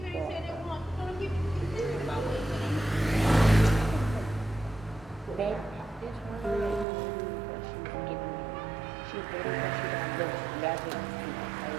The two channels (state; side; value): drops out; left; at 6.9 s